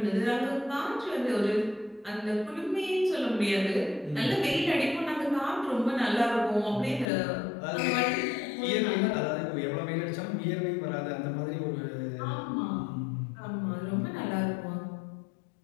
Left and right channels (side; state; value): right; drops out; at 7.1 s